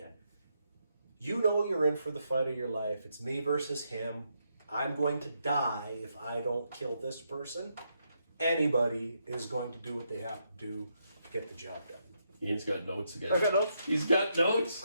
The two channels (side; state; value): both; inverted; correlation -0.79